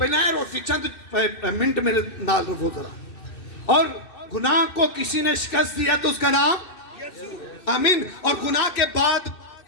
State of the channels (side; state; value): right; late; 2.6 ms